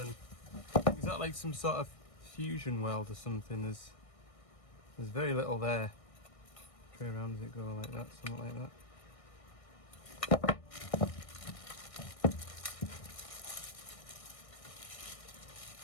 is that like some sort of fusion weld or something? There's very little there. Tray around, does it go like that, something like that?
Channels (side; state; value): right; late; 1.6 ms